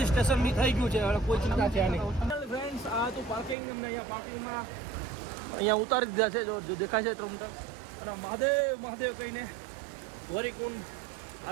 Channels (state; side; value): drops out; left; at 3.6 s